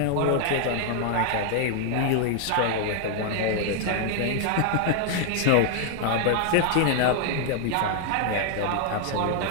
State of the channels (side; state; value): both; different; correlation 0.00